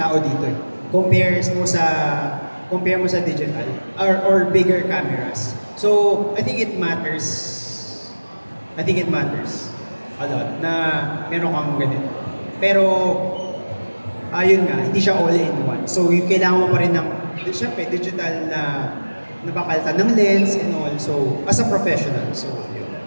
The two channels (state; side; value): inverted; both; correlation -1.00